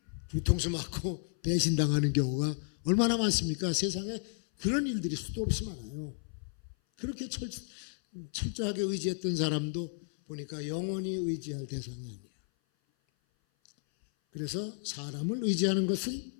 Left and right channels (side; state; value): right; silent; 56 dB below the other